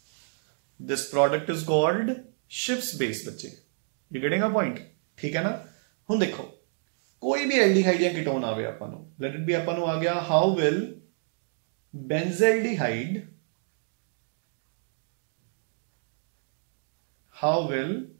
this product is called Schiff's base बच्चे you getting a point ठीक है ना हुण देखो कोई भी एल्डिहाइड या कीटोन आवे आपां नूं लेट इट बी आपां नूं आ गया how will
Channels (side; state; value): left; silent; digital silence